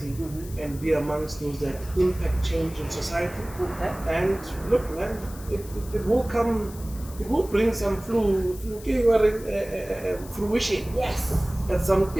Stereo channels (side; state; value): left; noise; hiss, 18 dB below the sound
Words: and be amongst those that impact change in society. Okay. And look, man, it will come, it will bring some fruition. Yes. At some